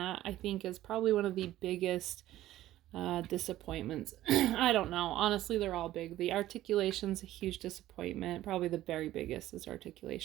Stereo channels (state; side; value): quieter; left; 14.4 dB